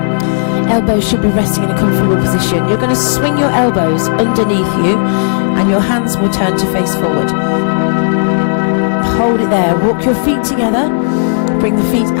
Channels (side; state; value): right; silent; digital silence